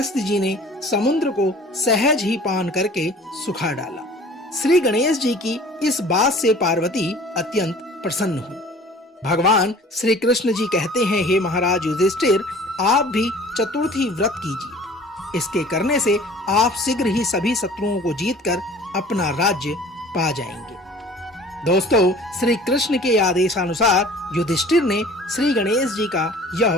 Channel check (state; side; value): normal; both; correlation 0.48